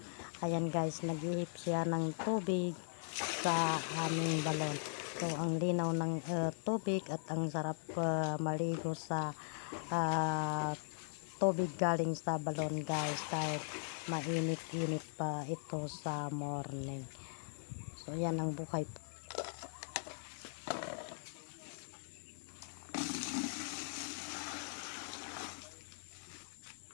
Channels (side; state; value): right; silent; digital silence